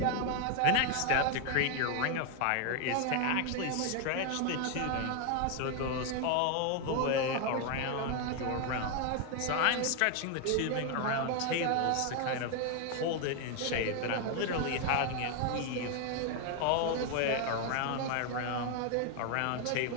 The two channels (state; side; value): different; both; correlation 0.01